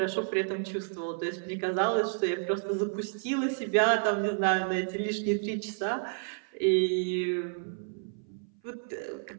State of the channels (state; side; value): silent; left; 56 dB below the other